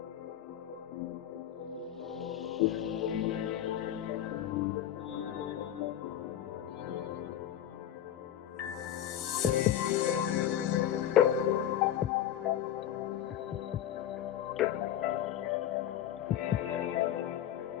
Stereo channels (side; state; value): right; quieter; 11.0 dB